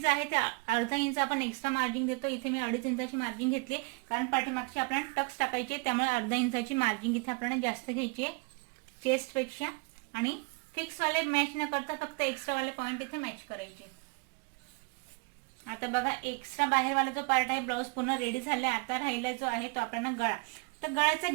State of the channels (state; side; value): quieter; left; 29.8 dB